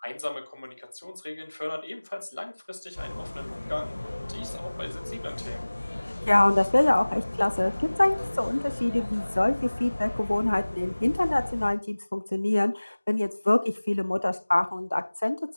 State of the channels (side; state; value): both; inverted; correlation -1.00